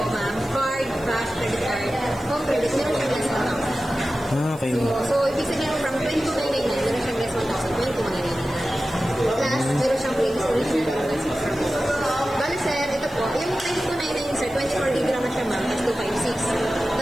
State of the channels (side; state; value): right; noise; hiss, 22 dB below the sound